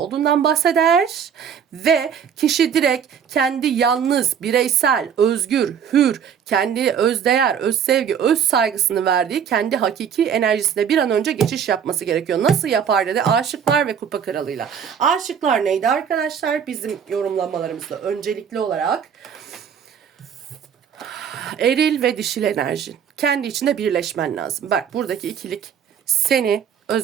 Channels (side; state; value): left; quieter; 7.9 dB